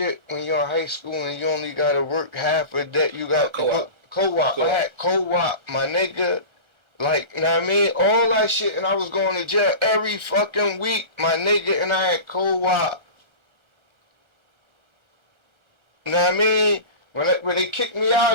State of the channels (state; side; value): late; left; 1.3 ms